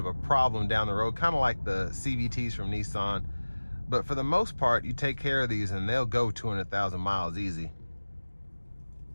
a problem down the road, kind of like the CVTs from Nissan. But for the most part, you take care of these and they'll go 200,000 miles easy.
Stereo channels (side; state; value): both; inverted; correlation -1.00